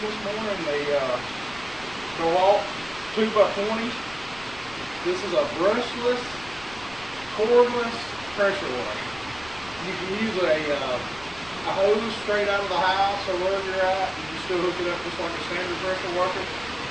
this morning the DeWalt 2x20. This is a brushless, cordless pressure washer. You can use a hose straight out of the house or wherever you're at. You can still hook it up just like a standard pressure washer.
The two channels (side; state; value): left; noise; rumble, 20 dB below the sound